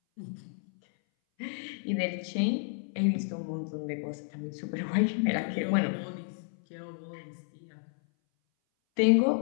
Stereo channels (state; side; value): silent; right; 57 dB below the other